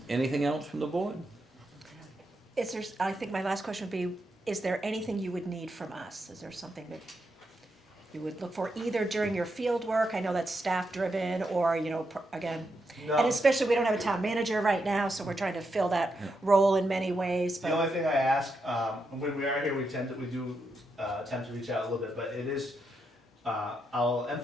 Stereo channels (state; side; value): normal; both; correlation 0.83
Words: anything else from the board? I think my last question would be, is there anything you would need from us? Is there something that you would look for either during your field work? I know that's staff driven or, again, No. and especially we don't have a town manager right now, so we're trying to fill that role in many ways, The but, only thing I ask, when we are here, we do attempt to reach out a little bit, but it is, I'll